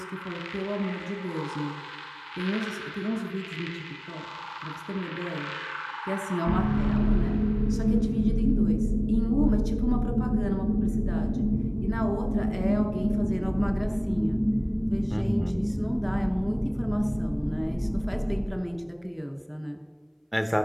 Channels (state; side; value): identical; both; correlation 1.00